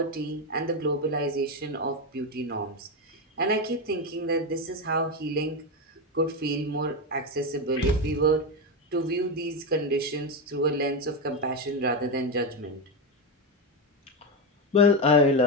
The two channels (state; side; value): normal; both; correlation 0.11